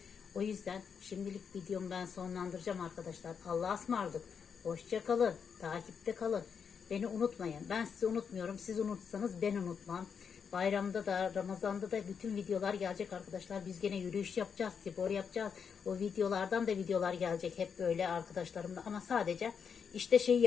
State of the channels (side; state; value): right; quieter; 6.6 dB